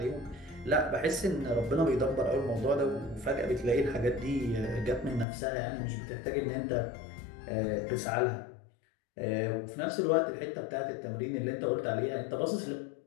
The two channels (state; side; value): drops out; right; at 5.2 s